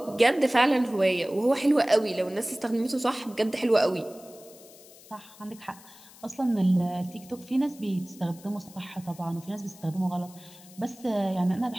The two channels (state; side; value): noise; left; hiss, 22 dB below the sound